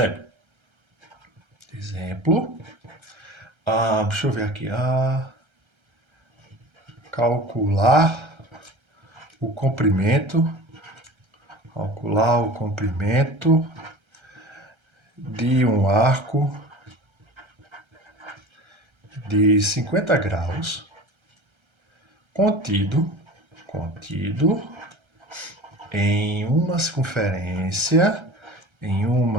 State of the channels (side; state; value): left; late; 1.3 ms